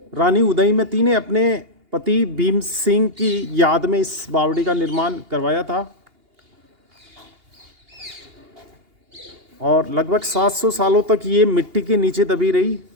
रानी उदयमती ने अपने पति भीम सिंह की याद में इस बावड़ी का निर्माण करवाया था और लगभग 700 सालों तक ये मिट्टी के नीचे दबी रही।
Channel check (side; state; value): left; late; 2.8 ms